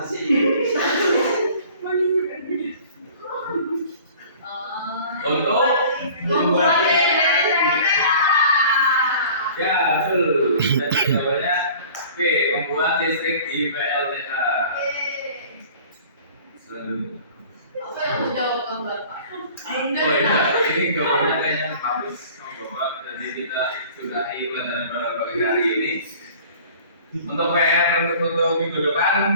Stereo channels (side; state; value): both; inverted; correlation -0.47